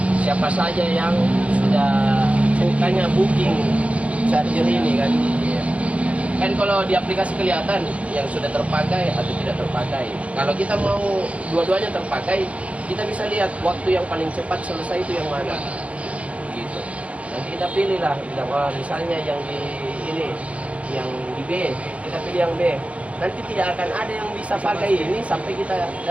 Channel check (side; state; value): left; late; 0.064 ms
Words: siapa saja yang sudah bukannya booking charger ini kan. Iya. Kan kalau di aplikasi kelihatan yang sudah terpakai atau tidak terpakai. Kalau kita mau dua-duanya terpakai, kita bisa lihat waktu yang paling cepat selesai itu yang mana. Gitu. Nanti kita pilih lah, misalnya yang di ini, yang di B, kita pilih yang B. Nanti tidak akan ada yang bisa pakai ini sampai kita